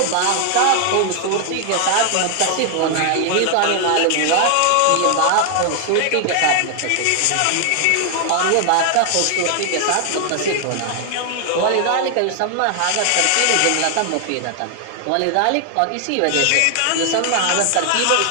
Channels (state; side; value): different; both; correlation 0.00